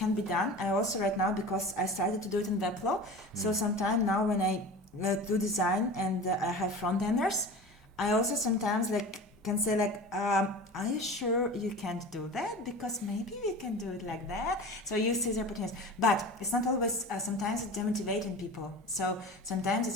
be done. I also right now, because I started to do it in Webflow, so sometimes now when I do design and I have front enders, I also sometimes like can say like, are you sure you can't do that? Because maybe we can do it like that. So you see the opportunities, but it's not always. Sometimes it's demotivating people. So sometimes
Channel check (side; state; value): both; normal; correlation 0.34